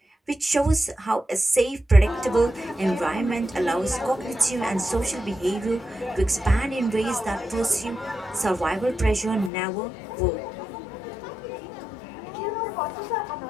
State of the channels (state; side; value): drops out; right; at 9.5 s